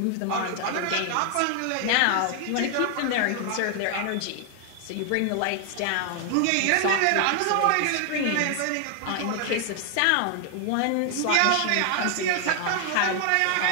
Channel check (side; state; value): both; different; correlation 0.00